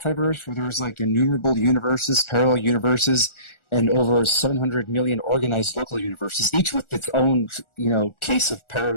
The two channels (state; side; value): late; right; 1.4 ms